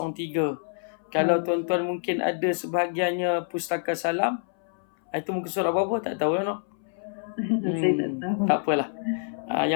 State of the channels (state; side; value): silent; right; 60 dB below the other